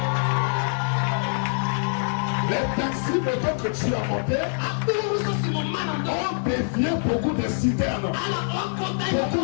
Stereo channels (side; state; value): right; silent; 62 dB below the other